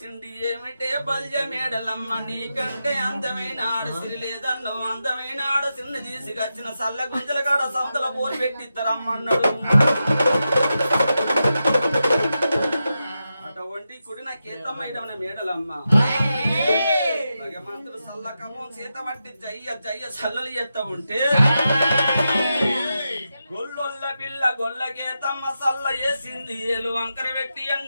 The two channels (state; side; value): inverted; both; correlation -0.89